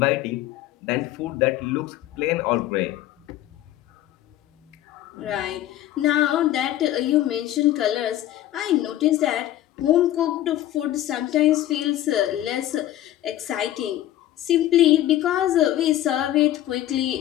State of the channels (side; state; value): right; quieter; 13.5 dB